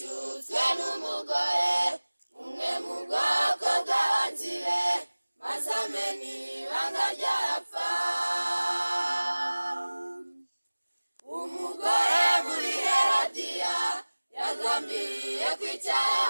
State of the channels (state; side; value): inverted; both; correlation -1.00